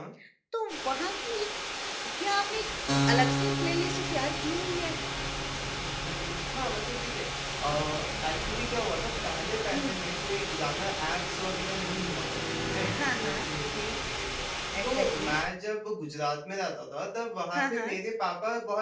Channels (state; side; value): identical; both; correlation 1.00